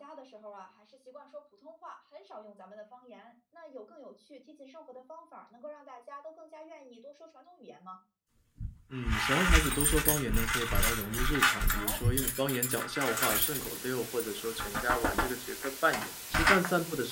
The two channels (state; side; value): identical; both; correlation 1.00